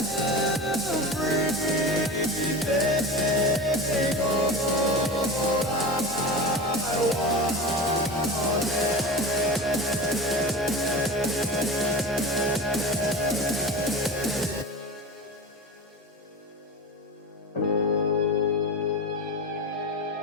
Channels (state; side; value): normal; both; correlation 0.28